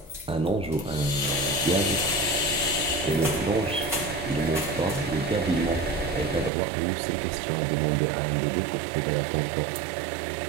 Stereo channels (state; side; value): drops out; left; at 6.5 s